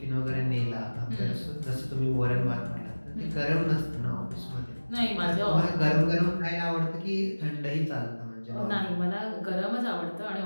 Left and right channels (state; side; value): inverted; both; correlation -1.00